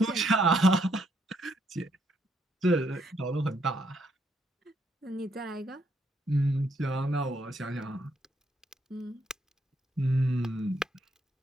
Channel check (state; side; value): normal; both; correlation 0.74